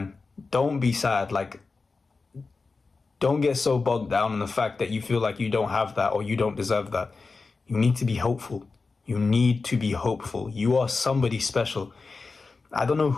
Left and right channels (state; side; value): quieter; right; 4.1 dB